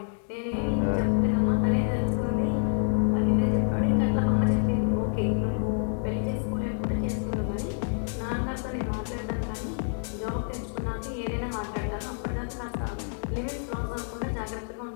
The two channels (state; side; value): silent; right; 59 dB below the other